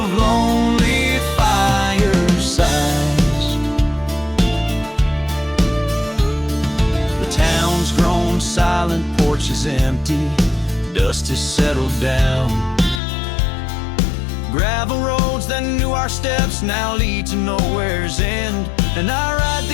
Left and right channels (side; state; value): right; drops out; at 13.0 s